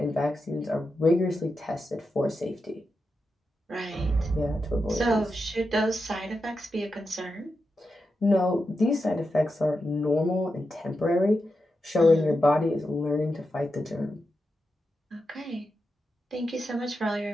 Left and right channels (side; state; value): both; normal; correlation 0.88